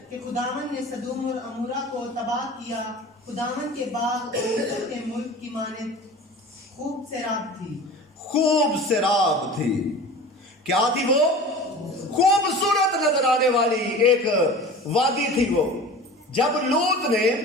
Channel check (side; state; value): both; normal; correlation 0.37